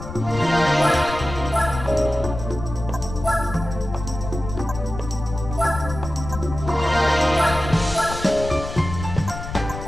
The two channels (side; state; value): left; noise; rumble, 9 dB below the sound